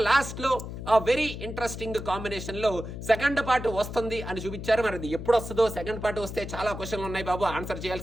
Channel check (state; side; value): noise; left; hum, 8 dB below the sound